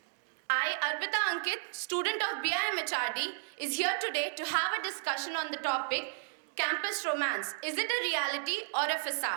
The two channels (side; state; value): left; silent; digital silence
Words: I, Arpita Ankit, student of BIM HRD, is here today to have a discussion on the topic, campus romance. Is it a reality or a